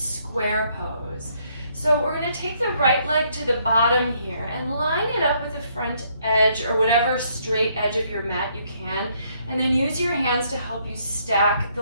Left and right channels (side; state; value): both; inverted; correlation -0.70